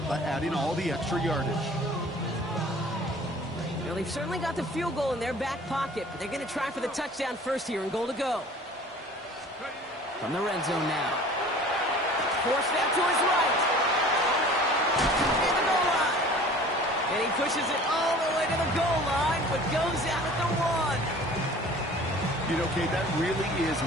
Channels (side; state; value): both; normal; correlation 0.46